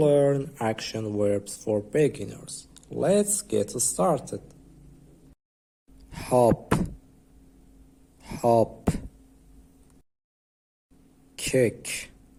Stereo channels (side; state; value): both; identical; correlation 1.00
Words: action verbs for beginners. Let's get started. Hop, hop. Kick,